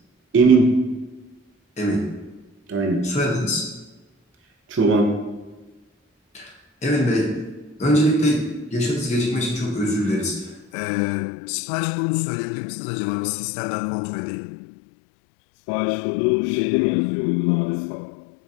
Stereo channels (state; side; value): drops out; right; at 10.7 s